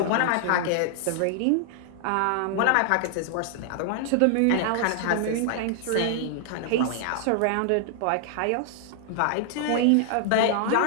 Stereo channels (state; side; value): different; both; correlation 0.00